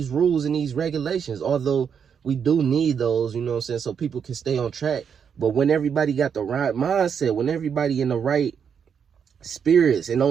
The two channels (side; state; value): left; quieter; 7.2 dB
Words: rules and these regulations, although we do need those, you know what I'm saying, so people can stay on track. But when everybody got the right mindset, when everybody in the right spirits and